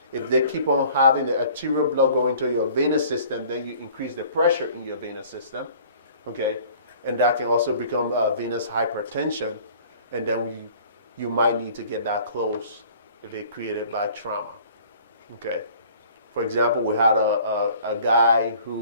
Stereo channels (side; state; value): both; inverted; correlation -0.51